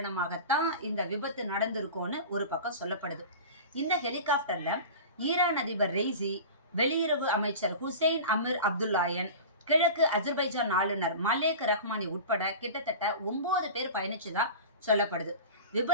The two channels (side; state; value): both; inverted; correlation -0.33